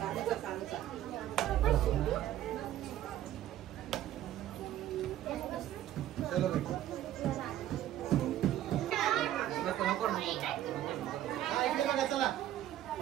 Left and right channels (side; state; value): left; quieter; 12.7 dB